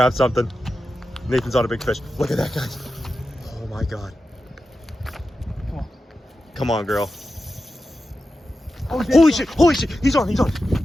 something. Nathan's on a big fish. Look at that, guys. Oh my God. Come on. Come on, girl. Oh, holy shit, holy shit. He's on.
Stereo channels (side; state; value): both; normal; correlation 0.91